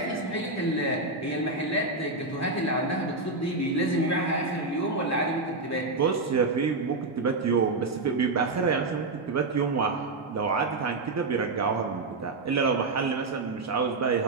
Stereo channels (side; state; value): left; quieter; 3.4 dB